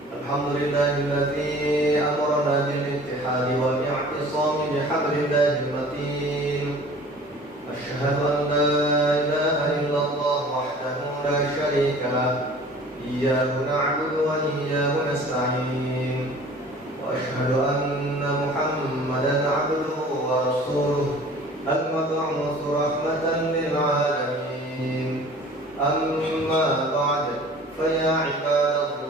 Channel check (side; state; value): both; normal; correlation 0.46